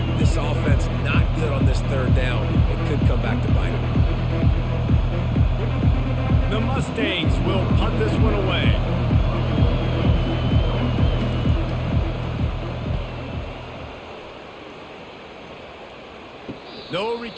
This offense not good on this 3rd down. It could come back to bite them. The Mustangs will punt this one away. No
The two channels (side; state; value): both; identical; correlation 1.00